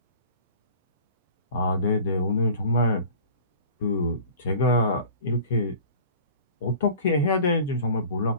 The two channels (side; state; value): both; inverted; correlation -0.44